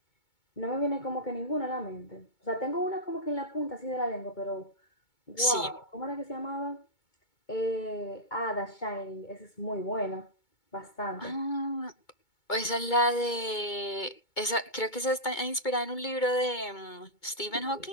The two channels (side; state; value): right; late; 2.2 ms